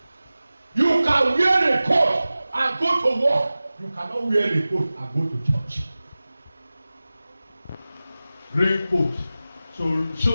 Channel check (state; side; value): inverted; both; correlation -0.96